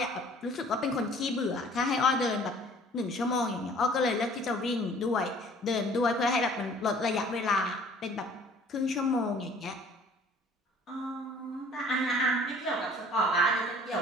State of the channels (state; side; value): normal; both; correlation 0.52